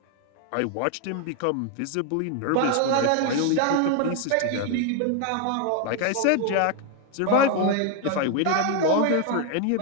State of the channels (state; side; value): different; both; correlation 0.01